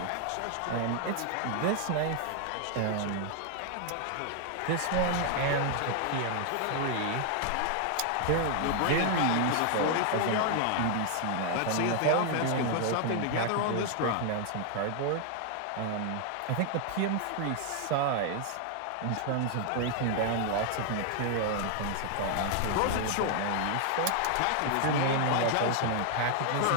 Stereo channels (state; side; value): different; both; correlation 0.00